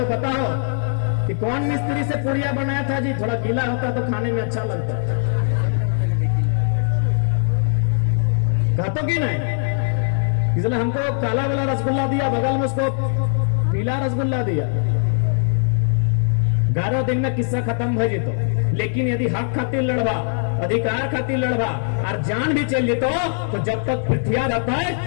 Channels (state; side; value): silent; right; digital silence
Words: बताओ कि कौन मिस्त्री से पुड़िया बनाया था जी थोड़ा गीला होता तो खाने में अच्छा लगता कहते कि नहीं इसलिए हमको काला वाला रसगुल्ला दिया बगल में उसको पीला रसगुल्ला दिया 11 दिन में किस्सा खत्म हो जीतो लेकिन यदि हक खातिर लड़वा अधिकार खातिर लड़वा और जान भी चल जीतो तो जब तक पृथ्वी रहता है